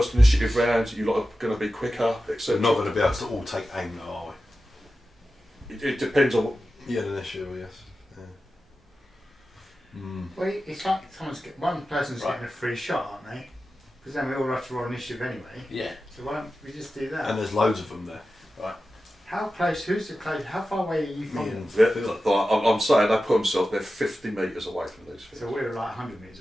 initiative round, you lot are going to be quicker, etc. We're not going to be able to all take aim though, are we? It depends on what. Yeah, initial, yes. Yeah. Well, it's like one person's getting a free shot, aren't they? Because then we all have to roll initiative anyway. Yeah. So why don't we just do that? And there's loads of them there. How close? Who's the close? How far away are you from Me them? and Yeah, Phil. I'm saying they put themselves, they're 50 metres away from these things. So we're like 100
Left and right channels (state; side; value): normal; both; correlation 0.93